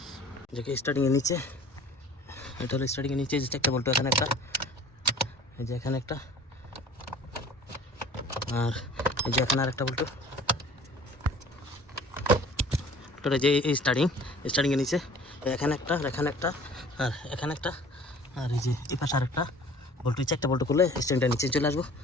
যে স্টারিংয়ের নিচে, এটা হলো স্টারিংয়ের নিচে যে 4টা বোল্ট, এখানে একটা, এই যে এখানে একটা, আর এই যে এখানে আরেকটা বোল্ট। ওটা যে এই স্টারিংয়ের নিচে এখানে একটা, এখানে একটা, আর এখানে একটা, আর এই যে এই পাশে আরেকটা বোল্ট। 4টা বোল্ট খুলে স্ট্যান্ডটা নিচে চলে আসবো।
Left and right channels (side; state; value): both; normal; correlation 0.48